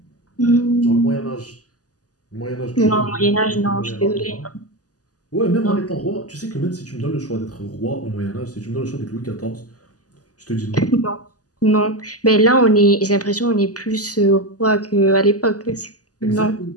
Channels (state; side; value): late; right; 0.67 ms